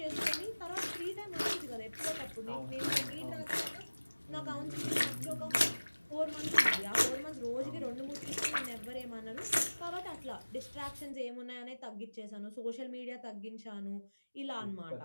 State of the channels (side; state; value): both; inverted; correlation -1.00